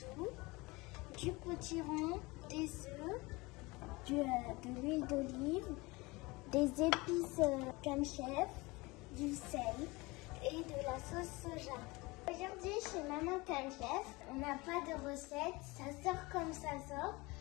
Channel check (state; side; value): quieter; right; 23.7 dB